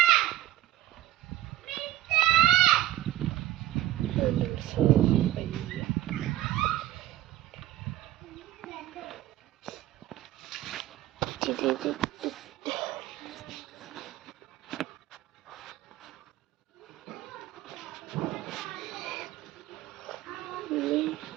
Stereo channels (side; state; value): left; quieter; 14.0 dB